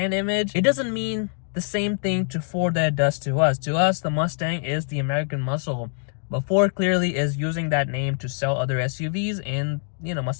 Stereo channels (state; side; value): silent; right; 56 dB below the other